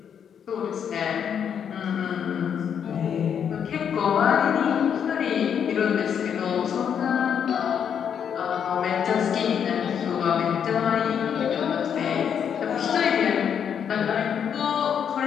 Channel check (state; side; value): quieter; right; 8.0 dB